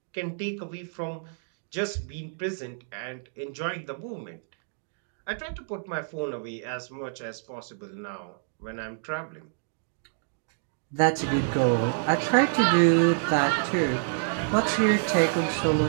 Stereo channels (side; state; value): left; silent; digital silence